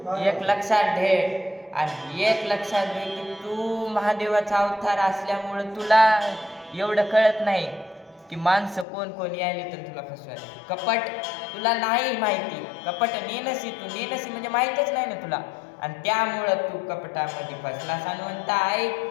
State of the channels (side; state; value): right; drops out; at 8.8 s